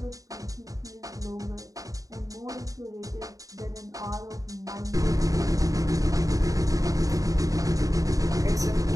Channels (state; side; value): late; left; 0.17 ms